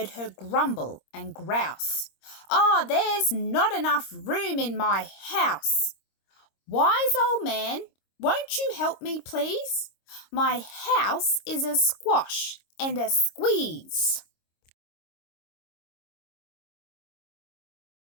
her grumble and grouse. "Oh, there's not enough room in my house. Wise old man, won't you help me, please? My house is a squash and a squeeze."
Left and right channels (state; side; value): late; right; 26 ms